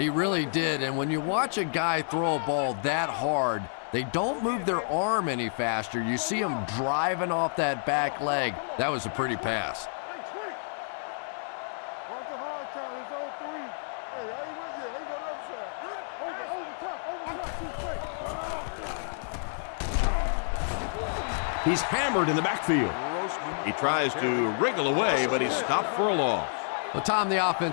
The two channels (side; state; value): right; silent; digital silence